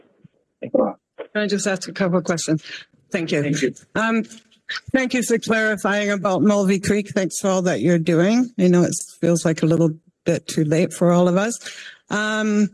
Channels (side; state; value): both; identical; correlation 1.00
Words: Can I just ask a couple of questions? Thank you. Thank you. Thank you for clarifying about Mulvey Creek. Thanks for all that you're doing. I know it feels like a little bit too late for all of us.